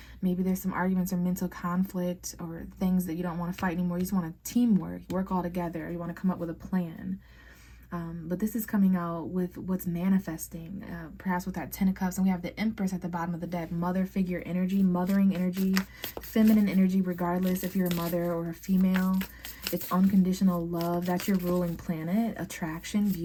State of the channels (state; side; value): identical; both; correlation 1.00